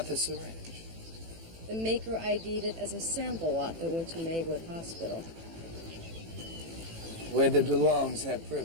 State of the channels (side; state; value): left; late; 18 ms